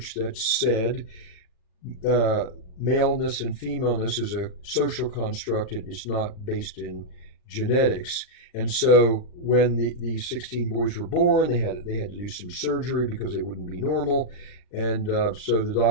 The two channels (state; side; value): late; right; 39 ms